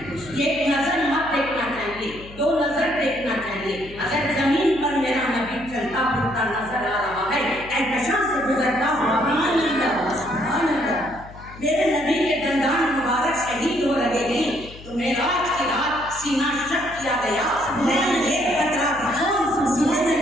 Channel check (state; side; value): noise; left; hum, 17 dB below the sound